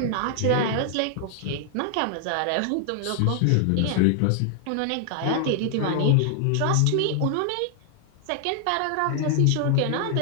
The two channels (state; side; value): different; both; correlation 0.00